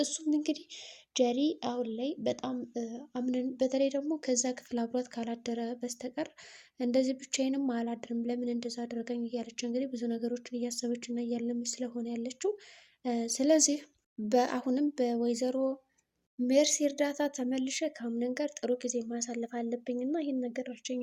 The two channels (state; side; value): identical; both; correlation 1.00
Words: እሱም እንግዲህ ጀሪ አሁን ላይ በጣም አምነን በተለይ ደግሞ ከዛ ክፍል አብሯት ካላደረ በስተቀር እንደዚህ ብቻዬንም አላድርም ለምን እንደዛ አደረገኝ እያለች እንግዲህ ብዙ ነገሮችን እያሰበች እና እያለመች ስለሆነ ያለችው። ስለዚህ በአሁንም በወይዘሮ ሜርሲ እርዳታ ተመልሼ ከአምነን ጋር ጥሩ ጊዜ ማሳለፍ አለብኝ እና ይህን ነገር እርጅኝ